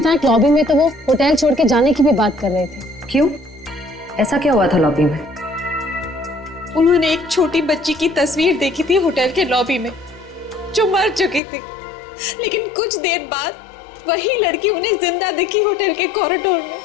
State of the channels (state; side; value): drops out; right; at 11.4 s